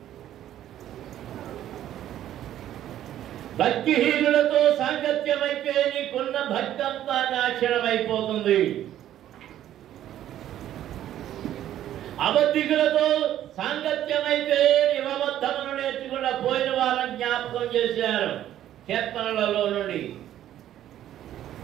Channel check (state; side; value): quieter; left; 12.0 dB